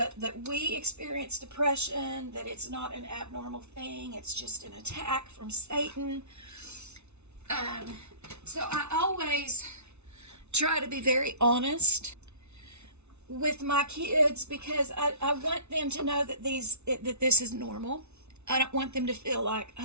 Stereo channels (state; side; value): late; left; 0.81 ms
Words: that we experience depression, that it's not an abnormal thing, it's just an attack from Satan. So I always try to be very honest with my kids, because I want them to know that this is normal. I don't want them to feel like,